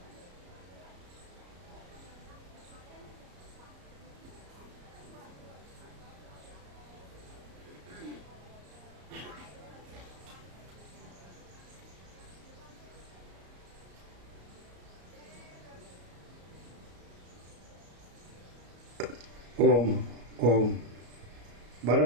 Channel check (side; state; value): left; late; 34 ms